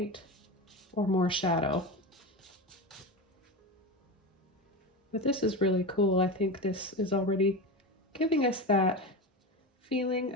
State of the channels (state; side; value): normal; both; correlation 0.22